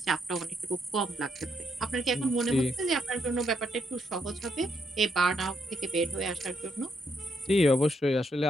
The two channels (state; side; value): normal; both; correlation 0.76